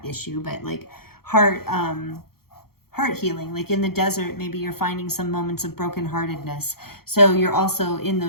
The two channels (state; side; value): late; right; 0.94 ms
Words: issue, but like heart healing. Like in the desert, maybe you're finding some moments of brokenheartedness. So you're also in